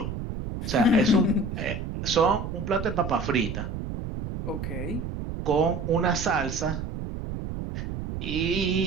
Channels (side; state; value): right; noise; rumble, 6 dB below the sound